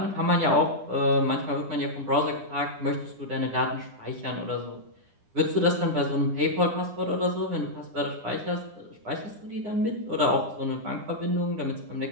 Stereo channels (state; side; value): late; left; 9.8 ms